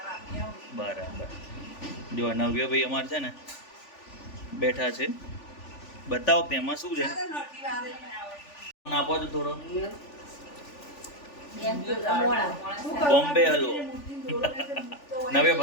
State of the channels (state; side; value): late; right; 3.4 ms